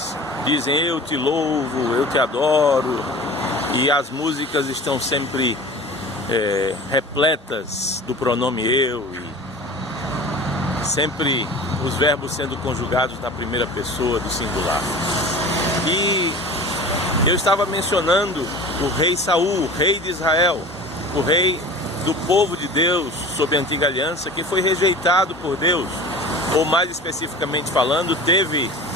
dizem eu te louvo, eu te adoro, e as músicas estão sempre repletas do pronome eu, e sempre os verbos sendo conjugados na primeira pessoa do singular. E eu estava mencionando o rei Saul, o rei de Israel, o rei do povo de Deus sob a antiga aliança, que foi rejeitado por Deus, ou mais especificamente falando, teve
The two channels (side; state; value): both; normal; correlation 0.38